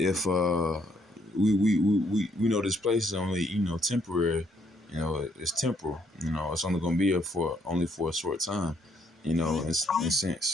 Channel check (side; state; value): both; normal; correlation 0.70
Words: we know this place is only temporary, it's temporal. It's only gonna be here for a short time. In